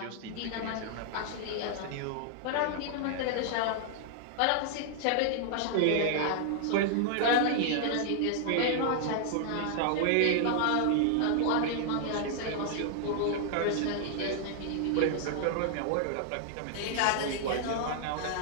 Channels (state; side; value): different; both; correlation -0.01